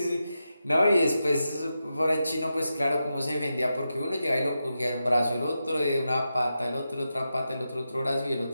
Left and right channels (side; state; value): both; inverted; correlation -0.89